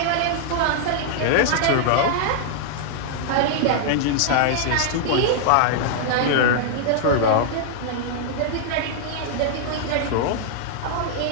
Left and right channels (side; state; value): both; different; correlation -0.01